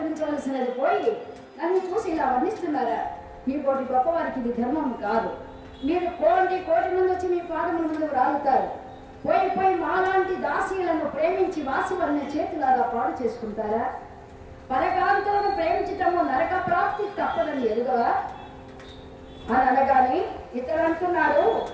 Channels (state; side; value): identical; both; correlation 1.00